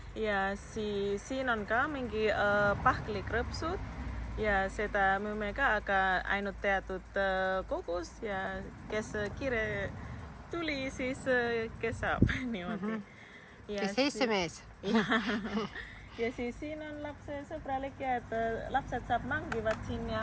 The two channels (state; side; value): identical; both; correlation 1.00